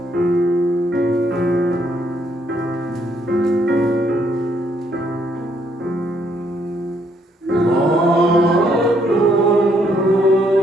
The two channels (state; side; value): normal; both; correlation 0.71